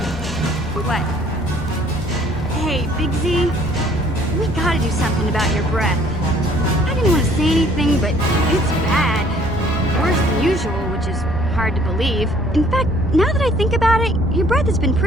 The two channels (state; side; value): normal; both; correlation 0.58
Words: What? Hey, Big Z, we gotta do something about your breath. I didn't want to say anything, but it's bad. Worse than usual, which is hard to believe. In fact, now that I think about it, your breath has been